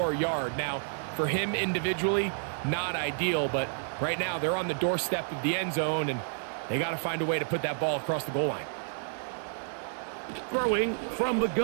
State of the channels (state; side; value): silent; left; 58 dB below the other